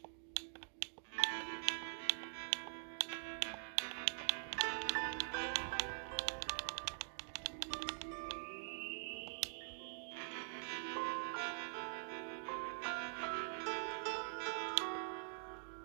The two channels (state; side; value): silent; left; digital silence